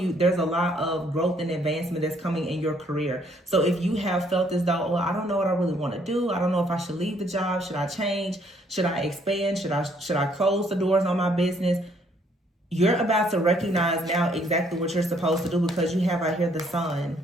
there's a lot of growth and advancement that's coming in your career. So if you have felt as though, well, I don't know what I really want to do. I don't know if I should leave the job. Should I change? Should I expand? Should I close the doors on my business? You're about to recognize now exactly what you're supposed to do because you have out here the Sun.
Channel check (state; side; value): normal; both; correlation 0.66